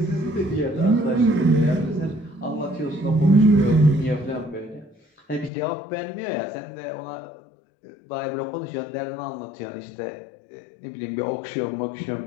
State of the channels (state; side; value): drops out; right; at 5.5 s